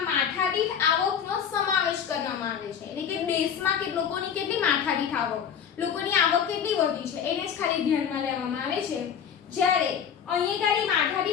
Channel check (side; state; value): right; quieter; 8.0 dB